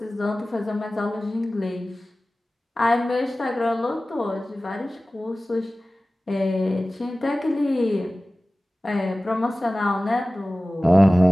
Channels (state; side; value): normal; both; correlation 0.97